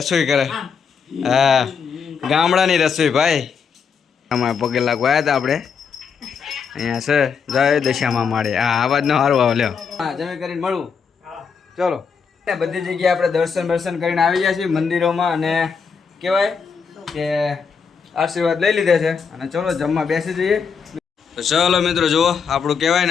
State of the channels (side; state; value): right; quieter; 6.1 dB